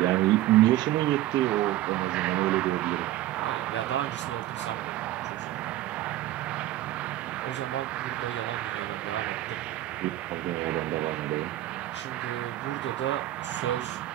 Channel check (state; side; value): quieter; left; 14.9 dB